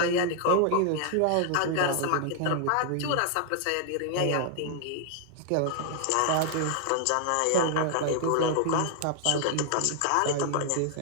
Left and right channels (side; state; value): both; different; correlation 0.00